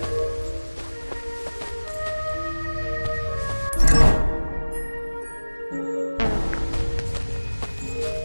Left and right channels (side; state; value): both; inverted; correlation -1.00